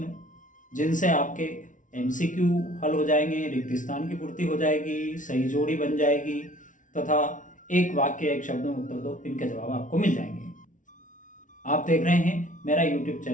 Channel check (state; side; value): late; right; 0.37 ms